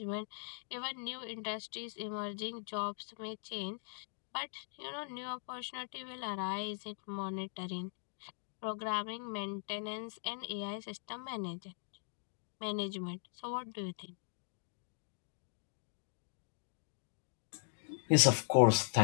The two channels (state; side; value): silent; right; digital silence